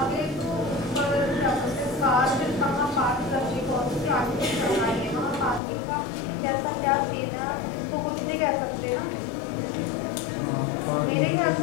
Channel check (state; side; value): drops out; right; at 5.6 s